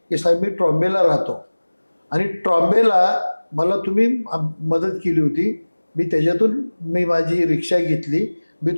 साहेब मी ट्रॉम्बेला राहतो आणि ट्रॉम्बेला मला तुम्ही मदत केली होती, मी त्याच्यातून माझी रिक्षा घेतली, मी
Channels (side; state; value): both; inverted; correlation -1.00